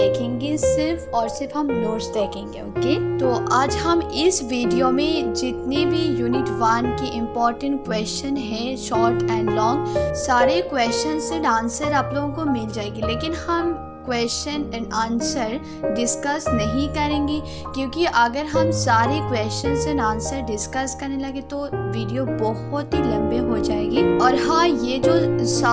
देखेंगे। सिर्फ और सिर्फ हम नोट्स देखेंगे। ओके, तो आज हम इस वीडियो में जितने भी यूनिट 1 की इम्पोर्टेंट क्वेश्चन है शॉर्ट एंड लॉन्ग, सारे क्वेश्चन एंड आंसर आप लोगों को मिल जाएगी। लेकिन हम क्वेश्चन एंड आंसर डिस्कस नहीं करेंगे, क्योंकि अगर हम सारे क्वेश्चंस एंड आंसर डिस्कस करने लगे तो वीडियो बहुत ही लंबे हो जाएगी। और हाँ, ये जो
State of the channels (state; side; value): identical; both; correlation 1.00